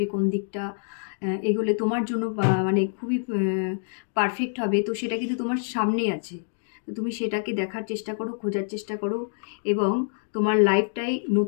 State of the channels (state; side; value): silent; right; digital silence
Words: কোন দিকটা এগোলে তোমার জন্য মানে খুবই পারফেক্ট হবে, তো সেটা কিন্তু তোমার সামনেই আছে। তো তুমি সেটাকে দেখার চেষ্টা করো, খোঁজার চেষ্টা করো, এবং তোমার লাইফটাই